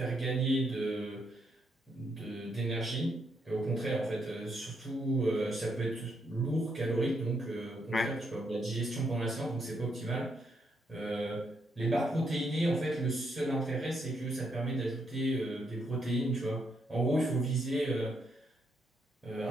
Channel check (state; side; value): normal; both; correlation 0.77